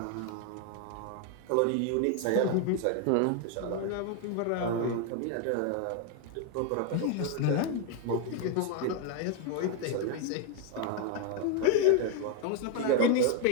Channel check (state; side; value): different; both; correlation 0.01